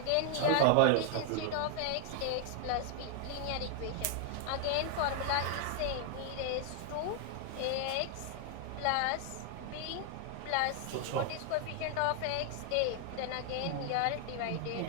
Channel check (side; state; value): both; different; correlation 0.00